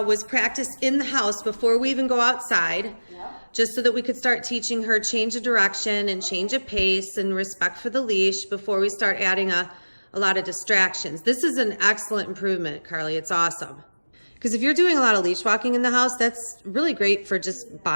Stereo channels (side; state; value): both; inverted; correlation -1.00